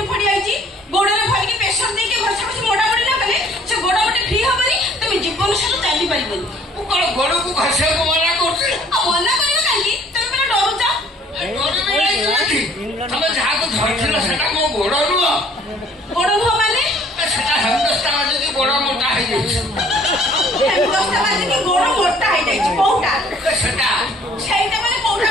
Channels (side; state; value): both; normal; correlation 0.57